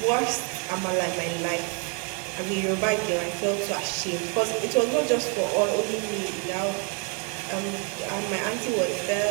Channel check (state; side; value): quieter; left; 37.2 dB